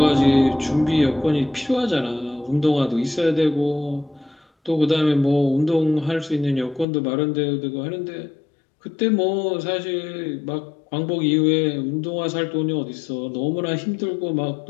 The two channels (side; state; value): right; drops out; at 6.9 s